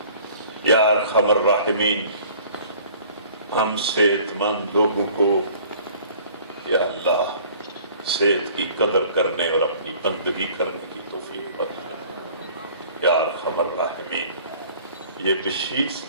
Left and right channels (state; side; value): inverted; both; correlation -0.51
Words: یا ارحم الراحمین ہم صحت مند لوگوں کو یا اللہ صحت کی قدر کرنے اور اپنی بندگی کرنے کی توفیق بخش دے. یا ارحم الراحمین یہ بشیر